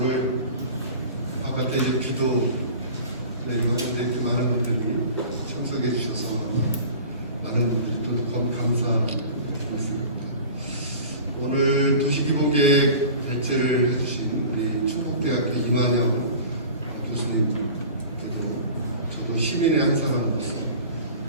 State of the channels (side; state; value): both; inverted; correlation -0.40